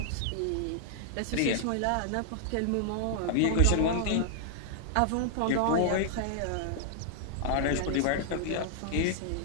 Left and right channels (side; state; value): both; different; correlation -0.01